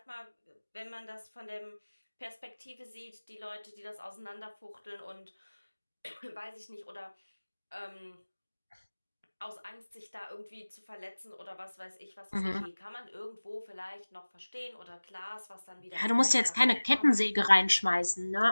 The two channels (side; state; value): both; inverted; correlation -1.00